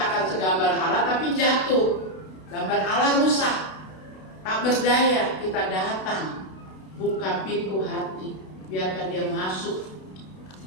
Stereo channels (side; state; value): right; late; 32 ms